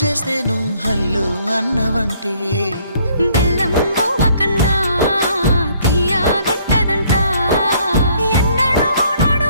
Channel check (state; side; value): inverted; both; correlation -0.63